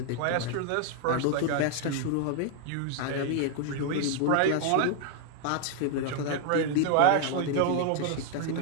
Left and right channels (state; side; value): different; both; correlation 0.00